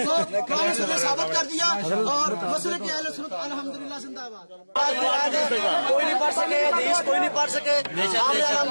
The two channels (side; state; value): both; inverted; correlation -1.00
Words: قرآن سے ثابت کر دیا اور مسلک اہل سنت الحمدللہ زندہ باد. کوئی نہیں پڑھ سکے حدیث، کوئی نہیں پڑھ سکے. ہم نے